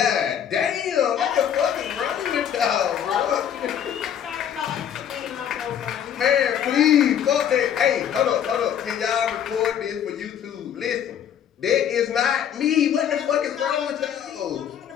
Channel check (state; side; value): quieter; right; 9.2 dB